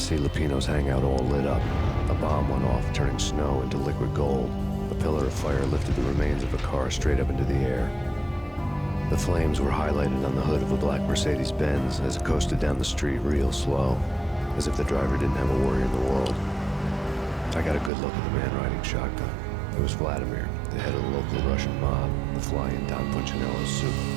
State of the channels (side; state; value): left; drops out; at 17.9 s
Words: Lupino's hangout all lit up. A bomb went off, turning snow into liquid gold. A pillar of fire lifted the remains of a car straight up into the air. The flames were highlighted on the hood of a black Mercedes-Benz as it coasted down the street real slow, as if the driver didn't have a worry in the world. I got a good look at the man riding shotgun. It was Vladimir, the head of the local Russian mob, the fly in Don Punchinello's soup.